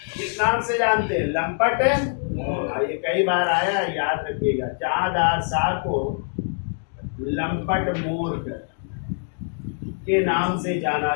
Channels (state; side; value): silent; right; 62 dB below the other